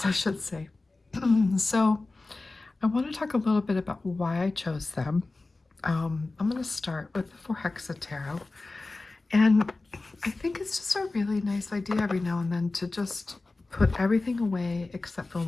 I should say. So I want to talk a little bit about why I chose them. I'm going to start with the Hexa Tarot. And I think it's just a really nice idea every now and then to just put everything away except for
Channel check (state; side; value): quieter; right; 3.3 dB